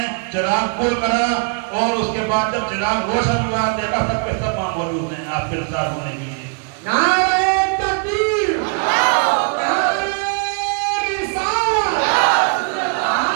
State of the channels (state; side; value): quieter; left; 39.0 dB